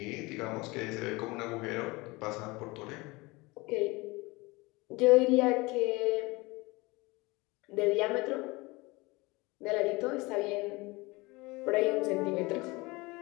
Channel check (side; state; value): right; quieter; 23.7 dB